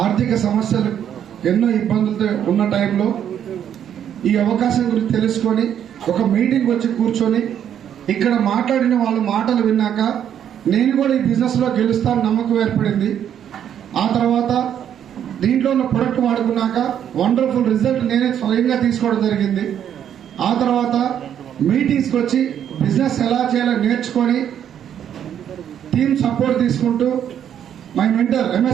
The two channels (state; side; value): quieter; left; 9.5 dB